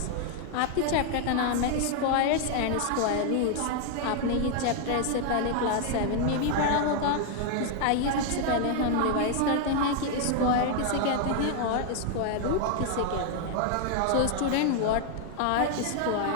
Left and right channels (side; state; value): both; different; correlation 0.00